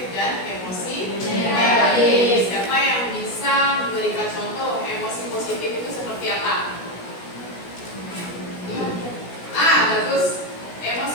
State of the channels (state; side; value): late; right; 16 ms